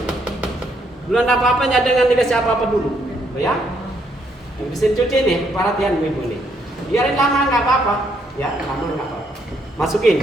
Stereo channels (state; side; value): normal; both; correlation 0.72